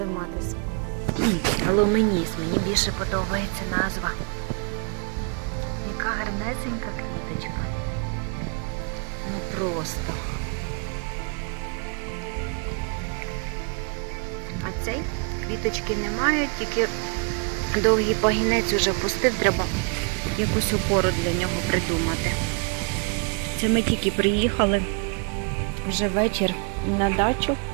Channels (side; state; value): left; quieter; 36.8 dB